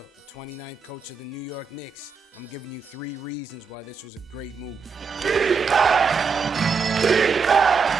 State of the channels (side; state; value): left; quieter; 5.4 dB